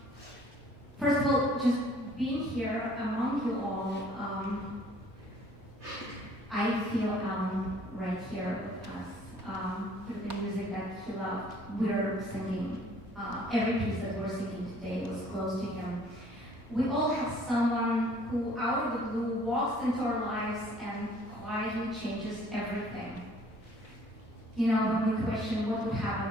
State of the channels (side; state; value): both; normal; correlation 0.56